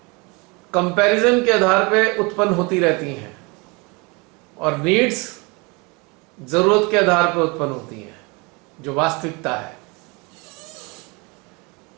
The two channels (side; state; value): left; quieter; 28.3 dB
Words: कंपैरिजन के आधार पे उत्पन्न होती रहती हैं और नीड्स जरूरत के आधार पर उत्पन्न होती हैं, जो वास्तविकता है।